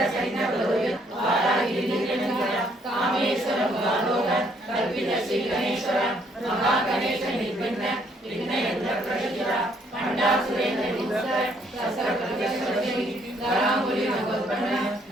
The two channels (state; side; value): normal; both; correlation 0.67